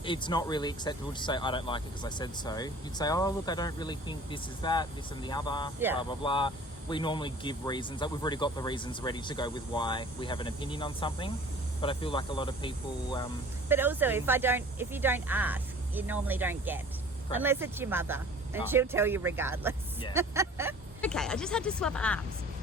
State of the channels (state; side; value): normal; both; correlation 0.47